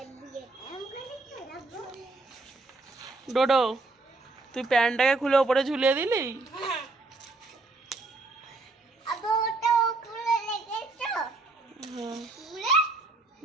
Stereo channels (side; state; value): left; quieter; 3.3 dB